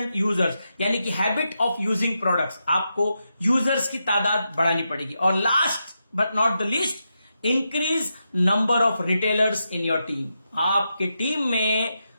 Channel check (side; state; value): both; inverted; correlation -0.86